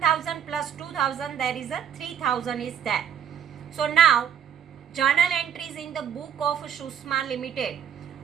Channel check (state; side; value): quieter; left; 8.7 dB